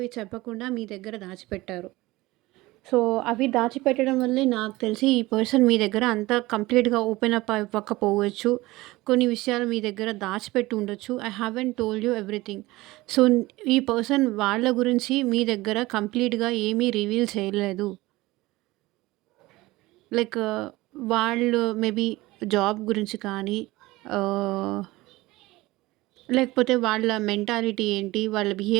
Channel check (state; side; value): quieter; left; 19.7 dB